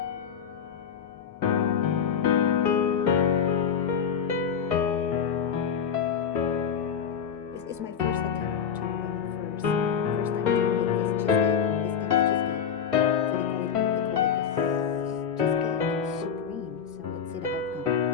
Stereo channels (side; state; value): right; quieter; 7.4 dB